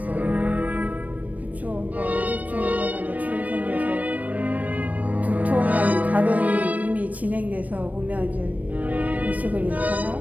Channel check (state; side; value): late; left; 0.073 ms